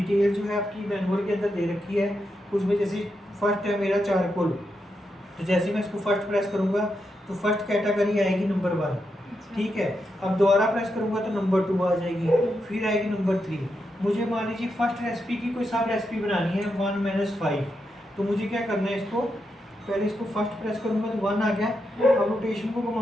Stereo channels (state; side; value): normal; both; correlation 0.85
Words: जो है आपकी मैनुअल के अंदर दे रखी है। उसमें जैसे फर्स्ट है मेरा चारकोल, तो जैसे मैं इसको फर्स्ट प्रेस करूँगा तो फर्स्ट कैटेगरी आएगी नंबर 1, ठीक है। अब दोबारा प्रेस करूँगा तो नंबर 2 आ जाएगी, फिर आएगी नंबर 3। मुझे मान लीजिए फर्स्ट रेसिपी की कोई सब रेसिपी बनानी है 1 - 5, तो मुझे क्या करना है, इसको पहले इसको फर्स्ट प्रेस करूँगा तो 1 आ गया। अब रोटेशन को